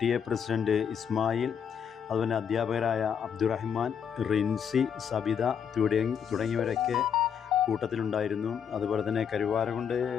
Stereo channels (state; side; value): quieter; right; 7.7 dB